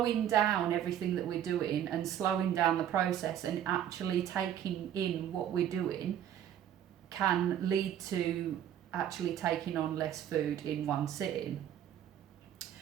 down everything that we're doing and slowing down the process and actually taking in what we're doing can lead to actually taking on less food in one sitting.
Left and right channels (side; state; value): left; quieter; 10.4 dB